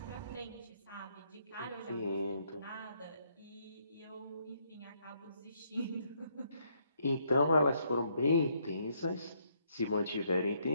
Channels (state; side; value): inverted; both; correlation -0.72